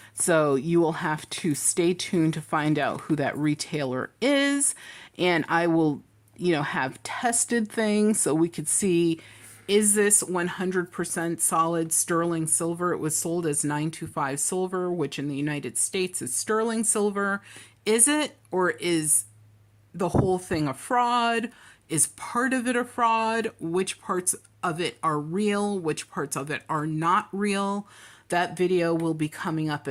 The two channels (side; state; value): both; identical; correlation 1.00